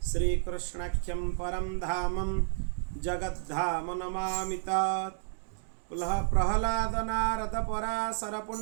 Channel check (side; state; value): left; silent; digital silence